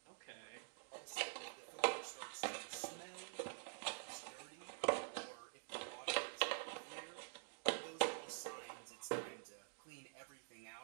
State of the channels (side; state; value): left; silent; digital silence